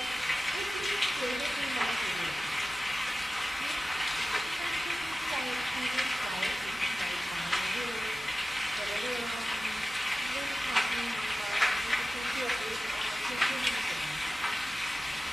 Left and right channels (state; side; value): normal; both; correlation 0.96